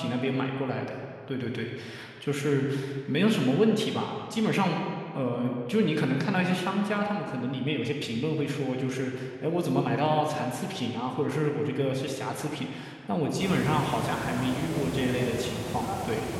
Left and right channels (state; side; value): identical; both; correlation 1.00